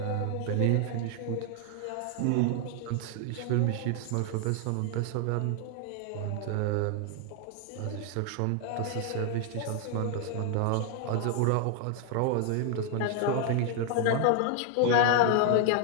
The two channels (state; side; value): different; both; correlation 0.00